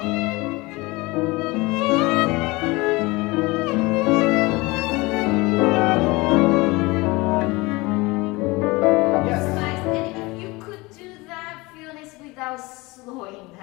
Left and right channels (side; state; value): right; quieter; 23.1 dB